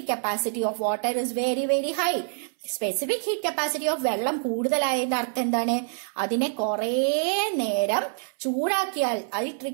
capacity of water is very very high. Specific heat capacity of വെള്ളം കൂടുതലായതിന്റെ അർത്ഥം എന്താണ്? അതിനെ കുറെ നേരം ചൂടാക്കിയാൽ it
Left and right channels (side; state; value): left; silent; 61 dB below the other